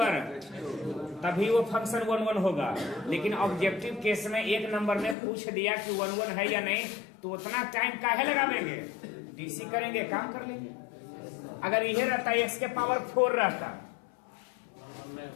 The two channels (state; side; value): drops out; right; at 5.2 s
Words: तभी वो फंक्शन 1 1 होगा। लेकिन ऑब्जेक्टिव केस में एक नंबर में पूछ दिया कि 1 1 है या नहीं, तो उतना टाइम काहे लगावेंगे, डीसी करेंगे, काम कर लेंगे। अगर यह रहता x के पावर 4 रहता,